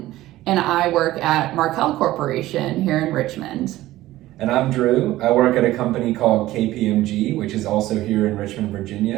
and I work at Markel Corporation here in Richmond. And I'm Drew. I work at a company called KPMG, which is also here in Richmond,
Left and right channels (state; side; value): quieter; left; 16.0 dB